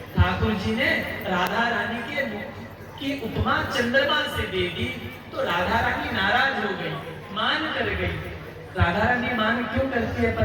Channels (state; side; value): identical; both; correlation 1.00